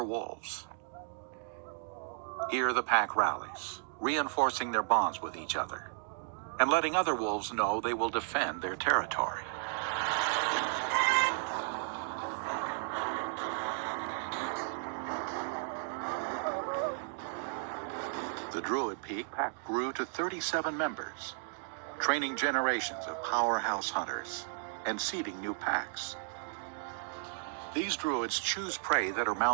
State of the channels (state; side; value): silent; left; digital silence